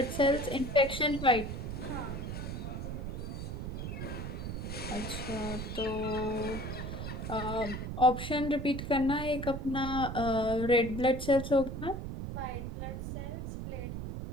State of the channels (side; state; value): right; noise; rumble, 5 dB below the sound